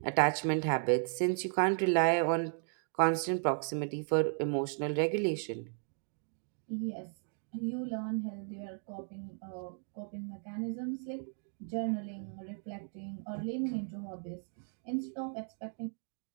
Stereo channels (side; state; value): left; silent; 54 dB below the other